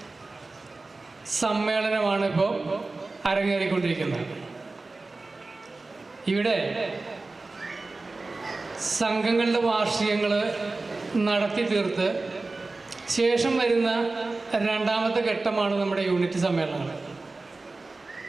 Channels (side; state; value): left; quieter; 3.4 dB